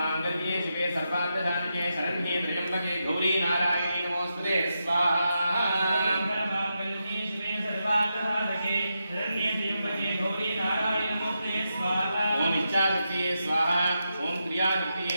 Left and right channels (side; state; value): both; inverted; correlation -0.86